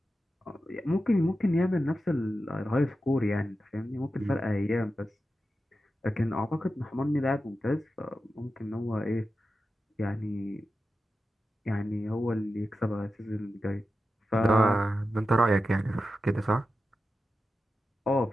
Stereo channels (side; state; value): both; normal; correlation 0.91